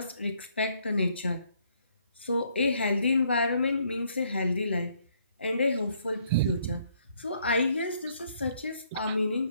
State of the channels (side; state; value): both; inverted; correlation -0.69